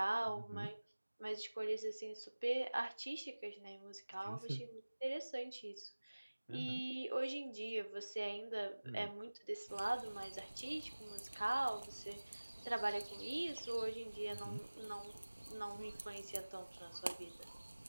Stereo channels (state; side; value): inverted; both; correlation -1.00